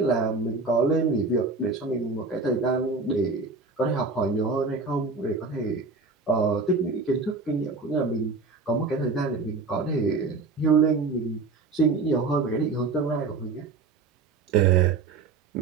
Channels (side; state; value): left; quieter; 4.1 dB